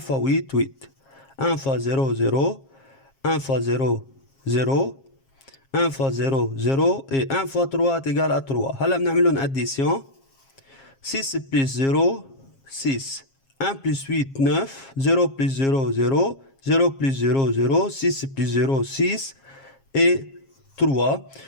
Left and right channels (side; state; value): right; late; 7.4 ms